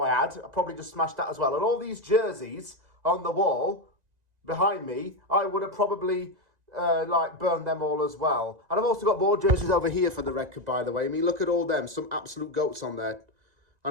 I had. I probably just smashed that as well. And all these jerseys on the wall behind me, I would have probably burn them all as well. And I've also got more jerseys over here for the record, by the way. I mean, look at all them. Some absolute goats on there.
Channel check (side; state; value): left; late; 1.9 ms